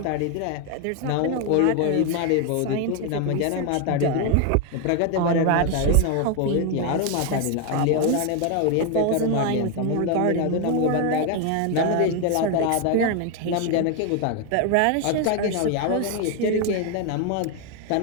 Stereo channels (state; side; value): different; both; correlation 0.01